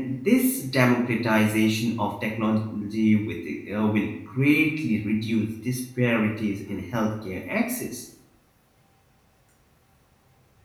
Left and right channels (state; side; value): identical; both; correlation 1.00